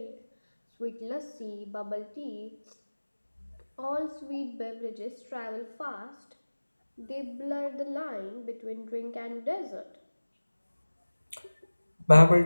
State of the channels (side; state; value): both; inverted; correlation -1.00